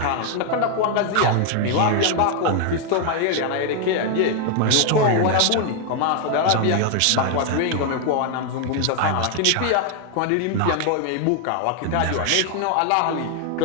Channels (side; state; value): both; different; correlation 0.00